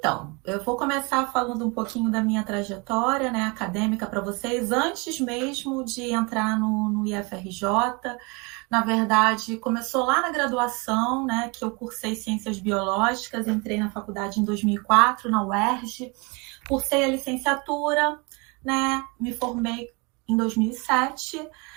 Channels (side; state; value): left; quieter; 29.1 dB